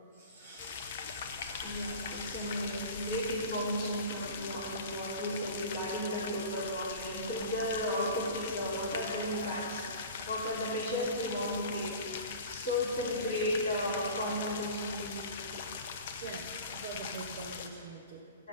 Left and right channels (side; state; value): both; inverted; correlation -0.38